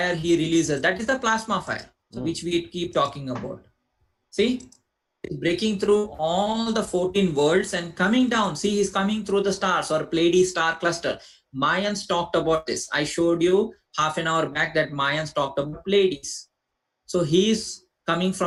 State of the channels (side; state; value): both; identical; correlation 1.00